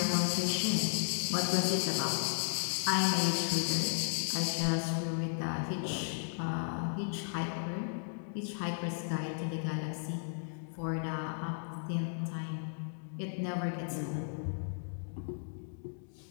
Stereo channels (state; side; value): silent; right; digital silence